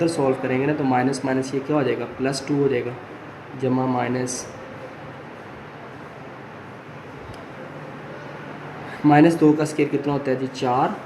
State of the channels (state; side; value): identical; both; correlation 1.00